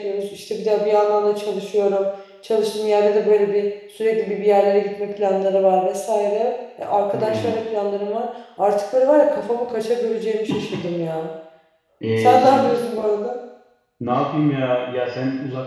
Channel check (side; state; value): both; identical; correlation 1.00